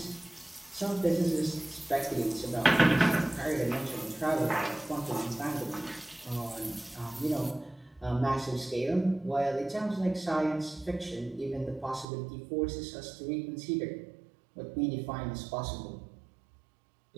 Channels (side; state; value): left; drops out; at 12.1 s